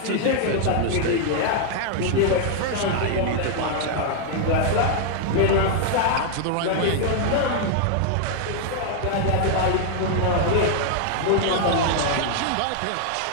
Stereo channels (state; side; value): different; both; correlation 0.00